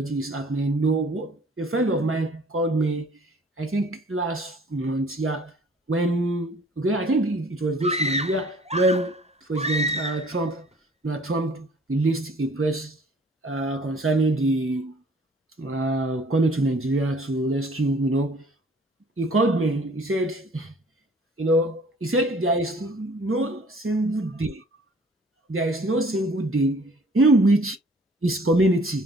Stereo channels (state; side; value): normal; both; correlation 0.54